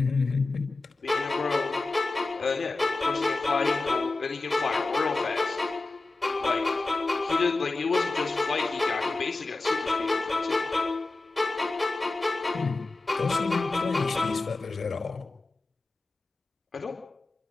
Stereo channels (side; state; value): right; quieter; 3.4 dB